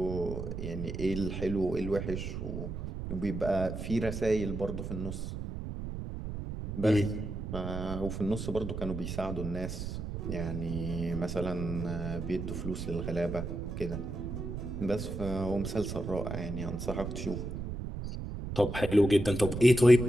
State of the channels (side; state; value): right; noise; rumble, 6 dB below the sound